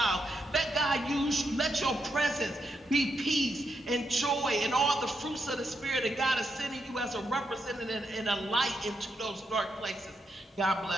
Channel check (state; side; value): normal; both; correlation 0.82